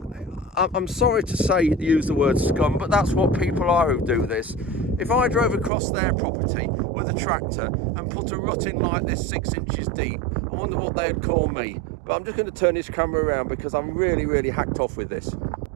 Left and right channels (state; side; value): drops out; left; at 5.7 s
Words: I'm sorry to say, use the word scum, but that's what people are who do this. If I drove across their property with a tractor and put a rut in like this 6 inches deep, I wonder what they'd call me. But I'm just going to turn this camera around because I'm really hacked off with this.